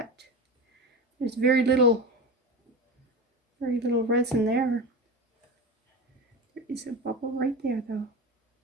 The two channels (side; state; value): both; normal; correlation 0.26